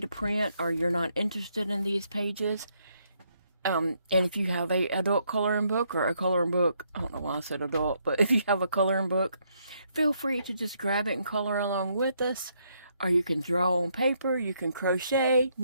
print, or you're not interested in these pages, and if you have a adult coloring book or a coloring book, I don't know why I said adult, but if you have a coloring book, feel free to just grab it and color along with us. Or you can draw on paper, you can crochet,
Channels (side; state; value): both; inverted; correlation -0.74